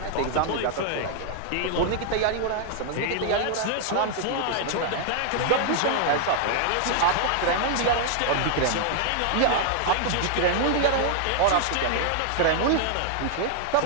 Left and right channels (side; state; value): both; different; correlation 0.00